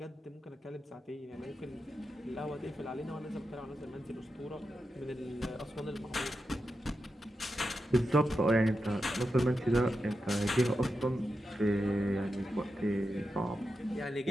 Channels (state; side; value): normal; both; correlation 0.89